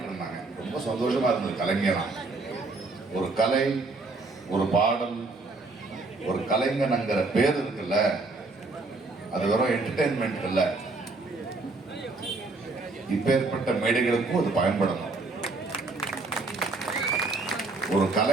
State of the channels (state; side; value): quieter; left; 3.5 dB